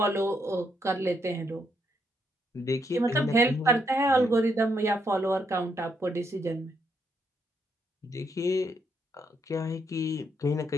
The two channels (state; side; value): normal; both; correlation 0.76